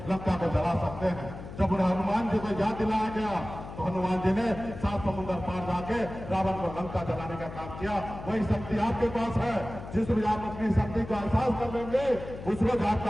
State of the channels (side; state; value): left; noise; hum, 12 dB below the sound